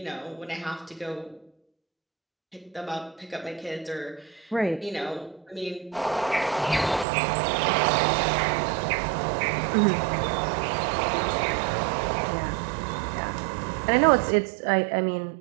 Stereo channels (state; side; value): drops out; left; at 7.1 s